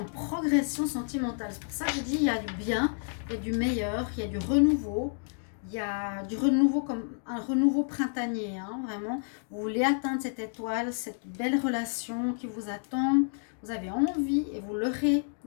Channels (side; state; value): right; silent; digital silence